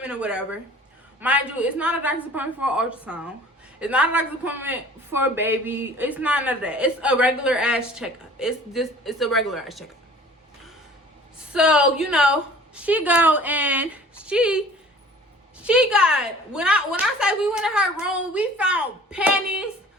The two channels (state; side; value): normal; both; correlation 0.48